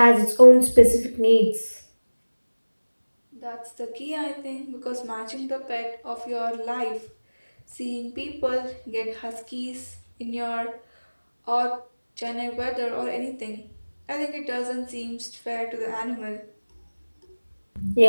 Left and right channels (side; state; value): both; inverted; correlation -1.00